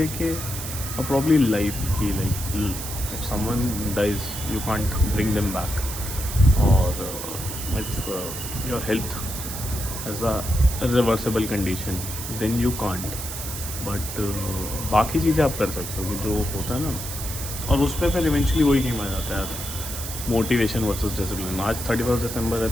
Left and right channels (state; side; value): noise; right; hiss, 7 dB below the sound